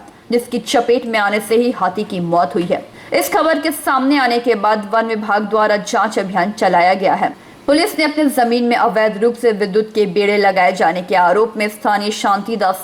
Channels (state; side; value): identical; both; correlation 1.00